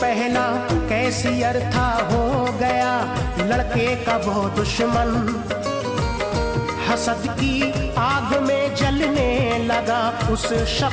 कैसियर था हो गया लड़के का वो दुश्मन। हसद की आग में जलने लगा उस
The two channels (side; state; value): both; identical; correlation 1.00